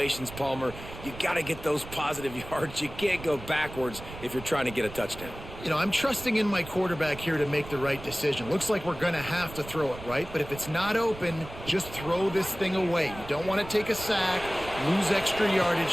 Palmer. You got to get those positive yards. You can't go backwards if you're trying to get a touchdown. You know, I'm trusting in my quarterback here to make the right decision. Looks like we're going to have to throw it, right? But if it's not open, just throw this thing away. You don't want to take a sack, lose extra yardage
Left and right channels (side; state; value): right; noise; rumble, 14 dB below the sound